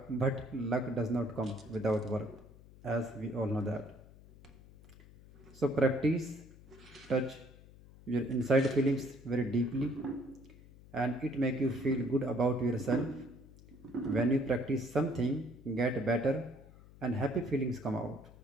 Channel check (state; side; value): noise; left; hum, 21 dB below the sound